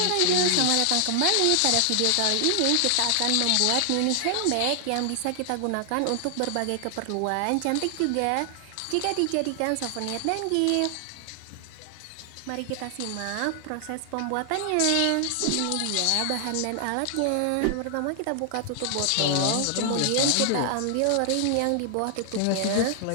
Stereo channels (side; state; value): both; different; correlation 0.00